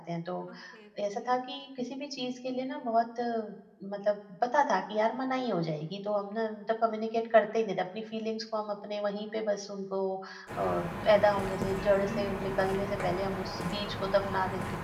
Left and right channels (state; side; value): identical; both; correlation 1.00